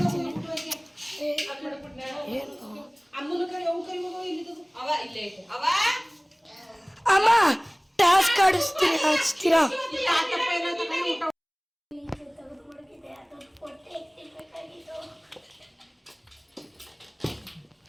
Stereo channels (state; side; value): identical; both; correlation 1.00